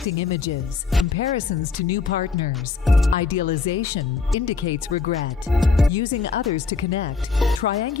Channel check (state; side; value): quieter; right; 4.7 dB